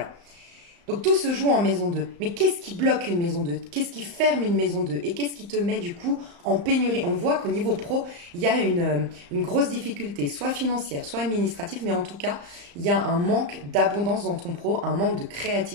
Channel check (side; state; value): left; late; 35 ms